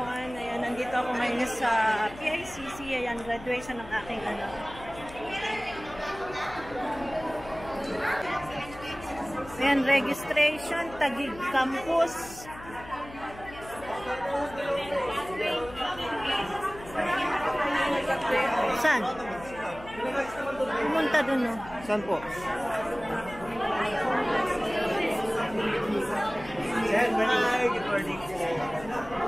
Ayan, nandito ako ngayon sa PICC. Ayan, graduation ng aking anak. Ayan, registration, Taguig Campus. Saan? Pumunta dun, no? Saan po? Hi, good morning po.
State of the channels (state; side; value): noise; left; hum, 17 dB below the sound